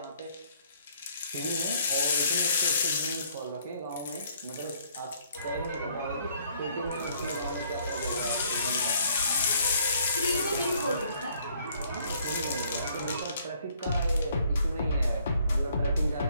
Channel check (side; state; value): both; inverted; correlation -0.64